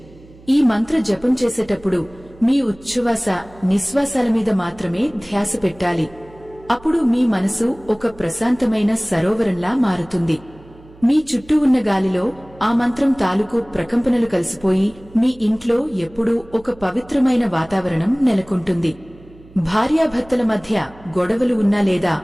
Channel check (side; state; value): right; noise; hum, 23 dB below the sound